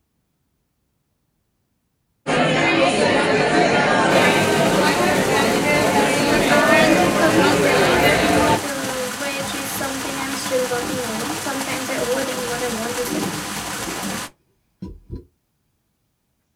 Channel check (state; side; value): identical; both; correlation 1.00